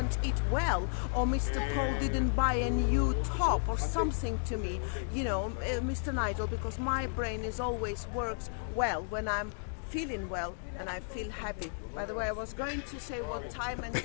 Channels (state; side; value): silent; right; digital silence